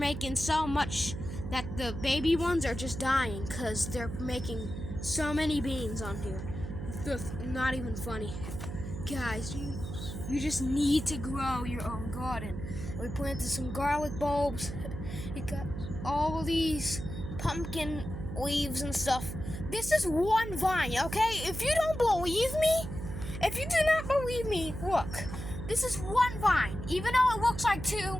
so much that the baby ones are just dying because they're making so many beans on here. It's not even funny. Guys, you just need to grow your own garden. We planted some garlic bulbs. We got all these pumpkin leaves and stuff. This is one vine, okay? If you don't believe me, if you do not believe me, look. This is one vine. Even though it looks like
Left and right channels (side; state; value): right; noise; hum, 7 dB below the sound